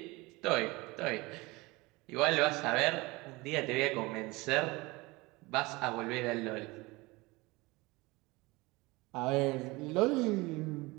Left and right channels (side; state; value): left; quieter; 23.0 dB